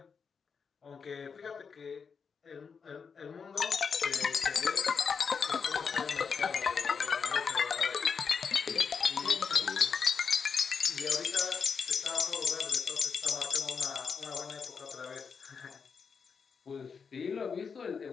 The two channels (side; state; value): right; quieter; 5.9 dB